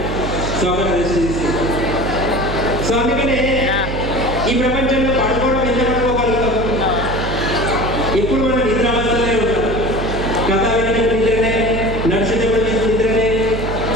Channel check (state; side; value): noise; right; hum, 5 dB below the sound